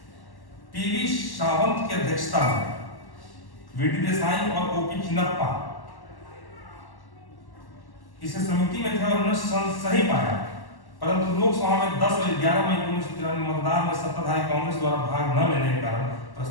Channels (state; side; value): late; right; 1.1 ms